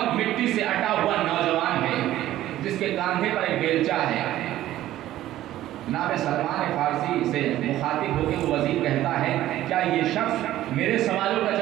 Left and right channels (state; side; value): quieter; left; 14.0 dB